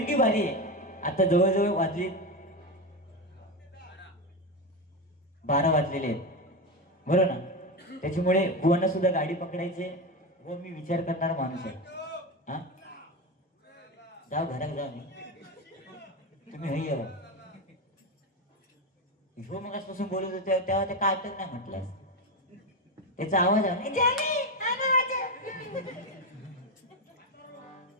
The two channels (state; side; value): normal; both; correlation 0.15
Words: बारी आहे. आता जवळजवळ वाजले 12 वाजलेले आहेत, बरोबर ना? त्याच्यामुळे बुवांना सुद्धा गाडी पकडायचे व मी विचार करणारा माणूस आहे. हा, जाऊ घरात जाऊ. मी तुम्ही हई यावं. ह्यो मग आजपासून बोलत होते तेव्हा ते काय नाही म्हटलं. त्याचा आवाज आहे